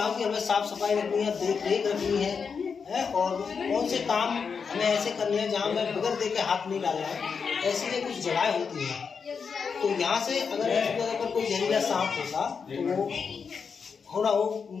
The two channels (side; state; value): right; quieter; 5.8 dB